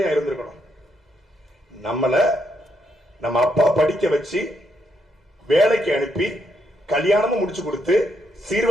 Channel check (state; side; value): normal; both; correlation 0.77